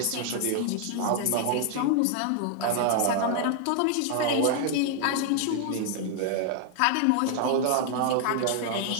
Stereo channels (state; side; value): different; both; correlation 0.00